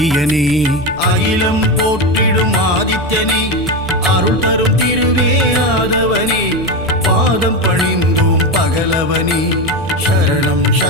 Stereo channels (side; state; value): right; noise; rumble, 17 dB below the sound